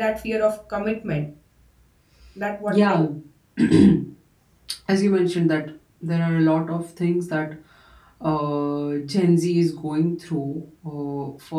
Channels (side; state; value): both; identical; correlation 1.00